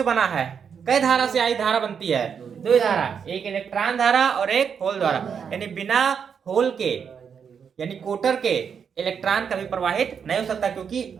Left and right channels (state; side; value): quieter; left; 7.0 dB